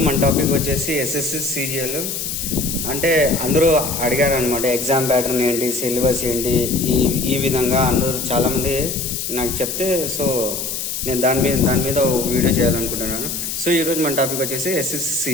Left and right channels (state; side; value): noise; left; hiss, 4 dB below the sound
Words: మన topic వచ్చేసి ఎస్ఎస్సి సిజిఎల్. అంటే అందరూ అడిగారు అనమాట, ఎగ్జామ్ ప్యాటర్న్ ఏంటి, సిలబస్ ఏంటి, ఈ విధంగా అందరూ చాలామంది నాకు చెప్తే, సో నేను దాని మీద ఒక వీడియో చేయాలనుకుంటున్నాను. సో ఈరోజు మన టాపిక్ వచ్చేసి ఎస్ఎస్సి